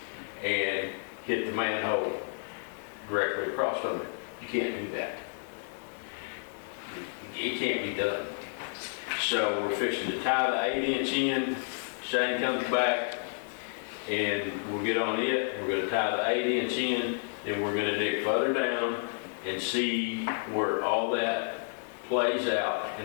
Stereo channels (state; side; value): silent; right; digital silence